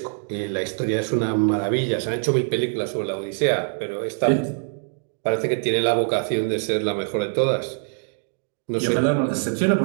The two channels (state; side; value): silent; left; 63 dB below the other